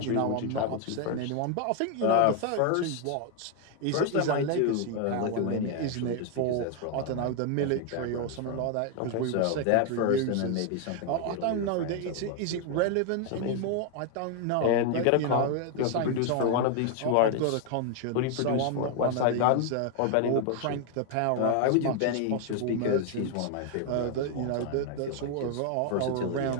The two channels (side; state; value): both; different; correlation 0.00